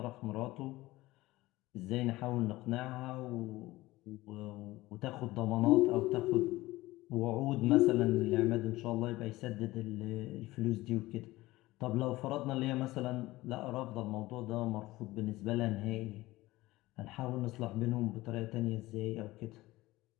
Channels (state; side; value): quieter; right; 18.6 dB